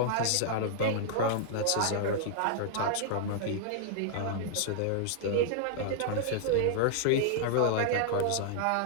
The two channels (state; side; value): different; both; correlation -0.01